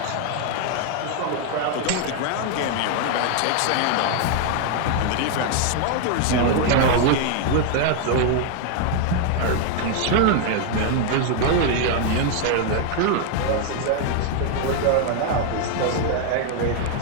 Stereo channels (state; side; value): different; both; correlation 0.00